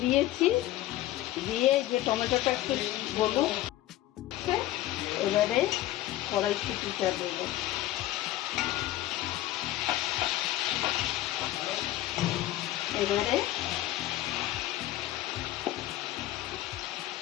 দিয়েছি। দিয়ে যে টমেটোটা একটু গলুক, এবারে কড়াইশুঁটিটা দেবো। এবারে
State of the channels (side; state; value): right; quieter; 15.0 dB